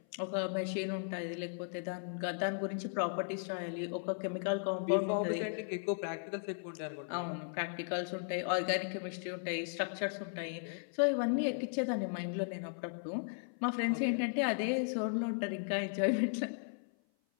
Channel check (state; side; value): silent; right; 53 dB below the other